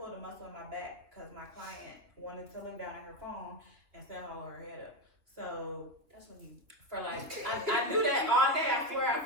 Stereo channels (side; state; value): left; late; 2.9 ms